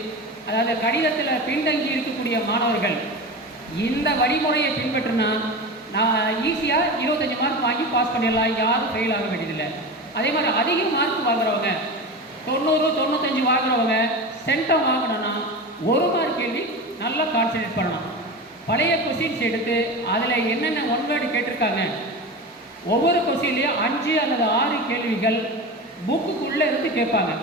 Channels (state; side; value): normal; both; correlation 0.27